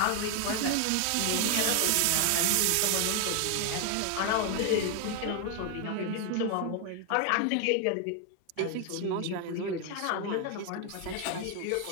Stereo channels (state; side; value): different; both; correlation 0.01